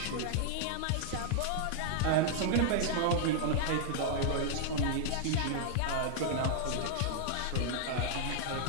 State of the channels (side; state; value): both; different; correlation -0.01